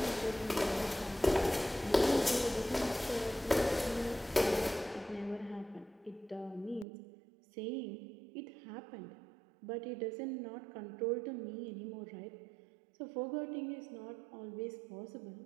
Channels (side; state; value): left; drops out; at 6.9 s